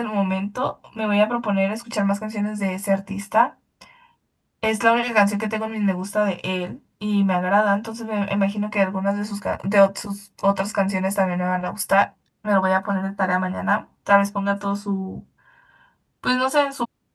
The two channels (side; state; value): both; identical; correlation 1.00